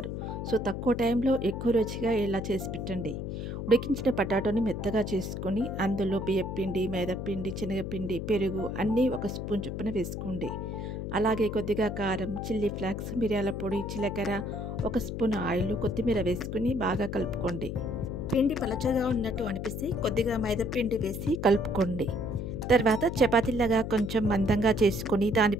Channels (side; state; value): left; noise; hum, 5 dB below the sound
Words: సో, తక్కువ టైంలో ఎక్కువ రుచిగా ఇలా చేసి పెట్టండి. ఉడికించిన పొటాటోని మెత్తగా చేసుకొని అందులో బియ్యపిండి, మైదాపిండి, శనగపిండి, పెరుగు అన్నీ ఒక స్పూన్ చొప్పున వేసుకోండి. అలాగే కొద్దిగా కారం, చిల్లీ ఫ్లేక్స్, మిరియాల పొడి, జీలకర్ర, ఒక స్పూన్ ఆయిల్, కొత్తిమీర వేసుకుని బాగా కలుపుకోండి. పిండి పలచగా ఉన్నట్టు అనిపిస్తే కొద్దిగా మైదాపిండి వేసి కలుపుకోండి. తర్వాత చపాతీలాగా కొంచెం మందంగా చేసుకొని